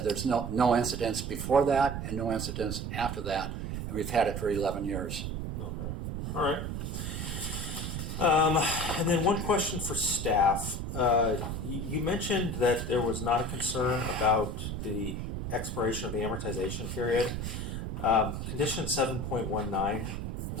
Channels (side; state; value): right; noise; rumble, 4 dB below the sound